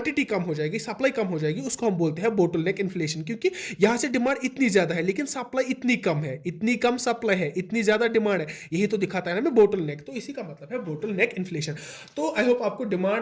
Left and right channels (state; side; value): identical; both; correlation 1.00